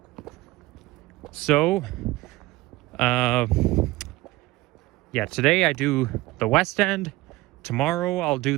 So, yeah, today I do the West End. Tomorrow I'll do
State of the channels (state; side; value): quieter; left; 19.4 dB